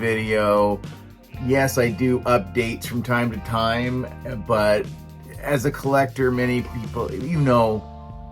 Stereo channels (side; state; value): both; identical; correlation 1.00